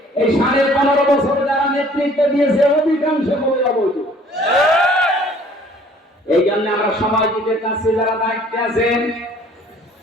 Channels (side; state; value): both; normal; correlation 0.55